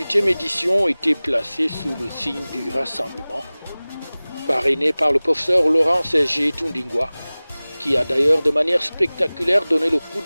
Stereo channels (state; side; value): inverted; both; correlation -0.99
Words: édition était placée sous le signe du rassemblement, parrainé par le professeur Laurent Serge Tundingwa, qui a d'ailleurs de manière spectaculaire donné le coup